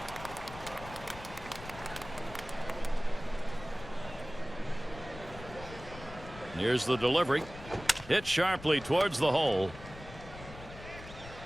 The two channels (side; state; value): left; noise; rumble, 14 dB below the sound